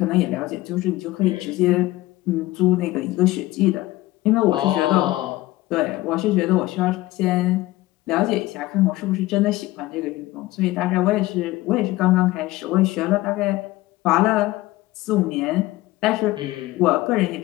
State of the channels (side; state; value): right; quieter; 18.0 dB